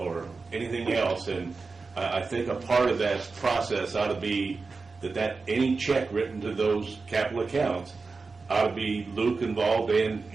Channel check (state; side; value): quieter; left; 4.2 dB